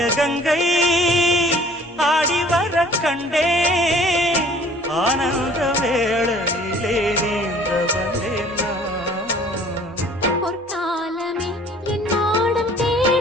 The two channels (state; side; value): normal; both; correlation 0.53